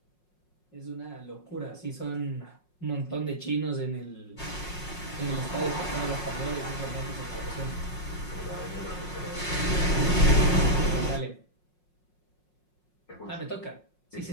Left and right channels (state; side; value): late; right; 5.5 ms